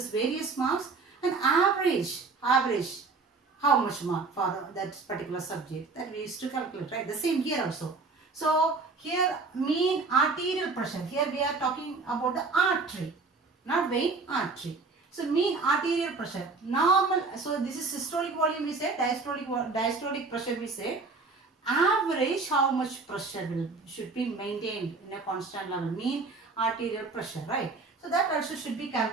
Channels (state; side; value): quieter; left; 4.1 dB